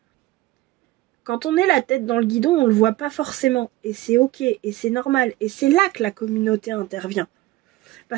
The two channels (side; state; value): left; quieter; 17.3 dB